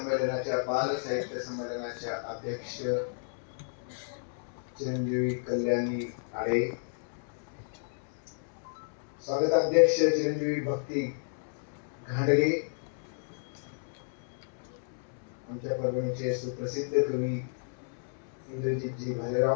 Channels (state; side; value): silent; right; 57 dB below the other